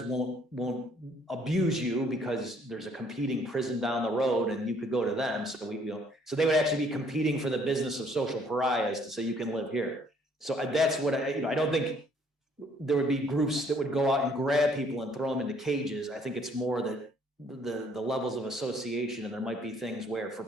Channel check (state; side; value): normal; both; correlation 0.63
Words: won't abuse you because there's a competing prison down the road and you could go to them. So so they would actually be competing for the business of social pariahs to say you can live here. So that's what I don't think there would be groups that would go out and grab people and throw them into cages. I think it's more that the levels of association, and there might be things where for